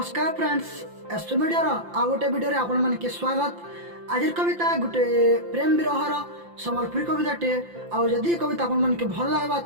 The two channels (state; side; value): late; left; 5.8 ms